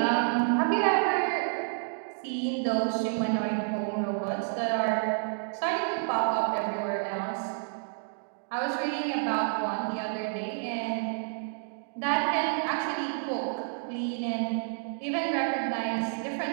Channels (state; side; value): silent; left; digital silence